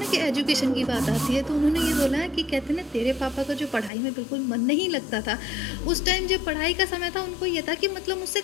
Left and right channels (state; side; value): drops out; right; at 3.9 s